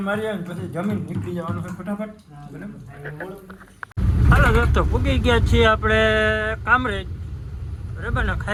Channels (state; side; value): identical; both; correlation 1.00